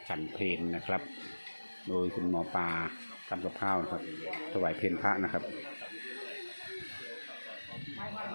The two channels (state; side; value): inverted; both; correlation -1.00